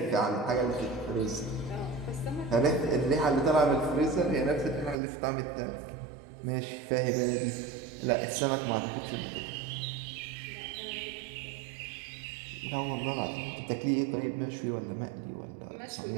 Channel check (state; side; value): drops out; left; at 5.0 s